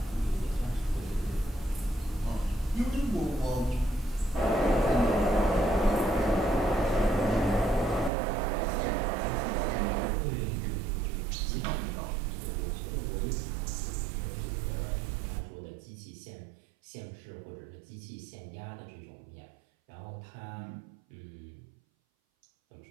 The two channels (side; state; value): left; drops out; at 8.1 s